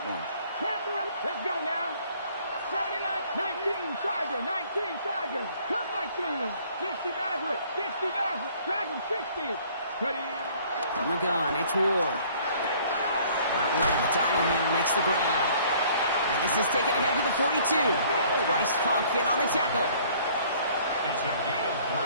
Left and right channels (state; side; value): inverted; both; correlation -0.56